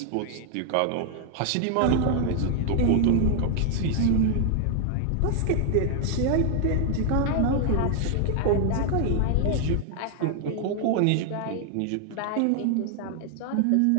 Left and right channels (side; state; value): both; different; correlation 0.00